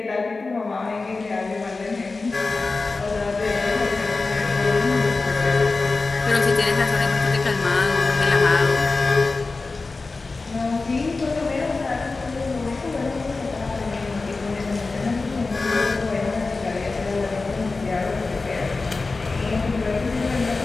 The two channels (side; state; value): right; quieter; 3.8 dB